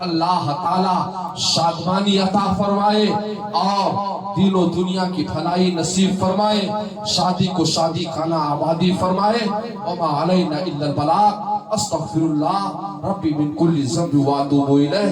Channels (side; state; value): both; identical; correlation 1.00